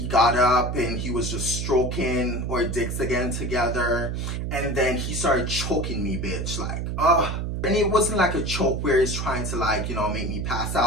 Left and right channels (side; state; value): right; noise; hum, 3 dB below the sound